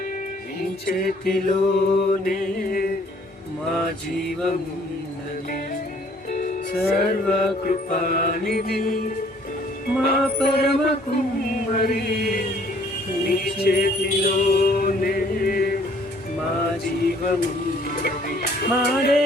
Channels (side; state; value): both; normal; correlation 0.59